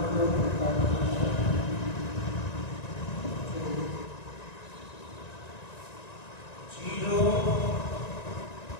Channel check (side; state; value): right; late; 1.9 ms